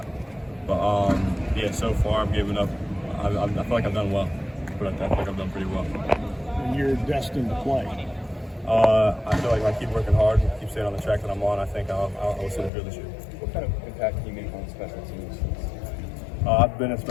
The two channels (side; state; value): right; drops out; at 12.7 s